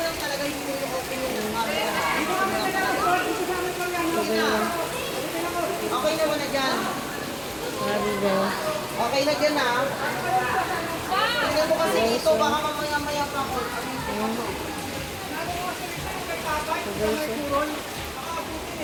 Okay naman na dyan. Grabe guys. Okay na dyan ha. Tingnan mo kasi dito, baka mamaya-maya pa ako.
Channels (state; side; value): identical; both; correlation 1.00